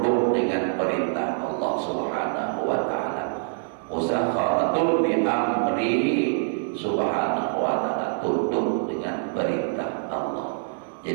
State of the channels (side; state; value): left; silent; 62 dB below the other